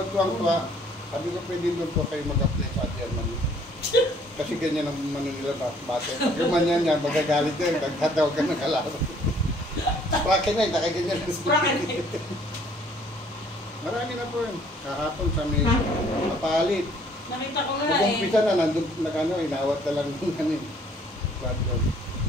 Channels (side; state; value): both; normal; correlation 0.60